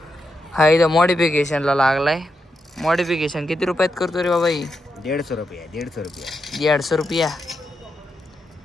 हा इथं मॉडिफिकेशनला लागलाय. मॉडिफिकेशन किती रुपयात करतो रे बाबा. 150 रुपया 150 रुपया 150 रुपया.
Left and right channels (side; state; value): both; normal; correlation 0.85